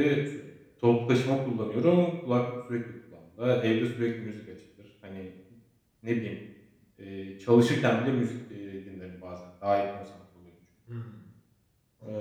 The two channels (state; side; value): identical; both; correlation 1.00